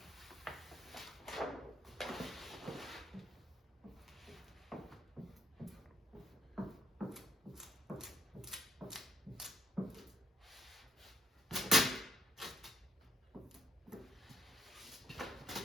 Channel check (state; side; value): normal; both; correlation 0.67